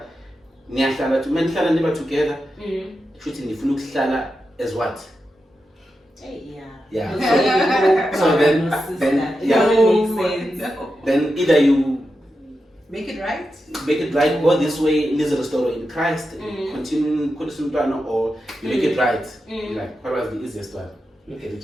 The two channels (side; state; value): both; normal; correlation 0.89